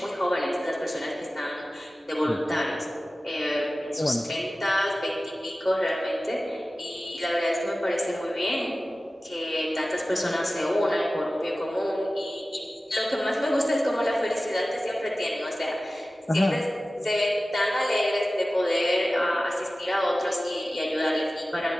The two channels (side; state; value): both; normal; correlation 0.96